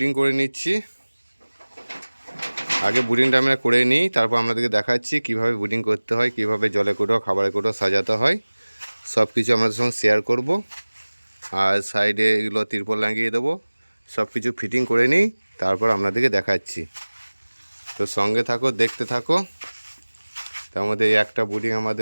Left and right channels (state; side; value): inverted; both; correlation -1.00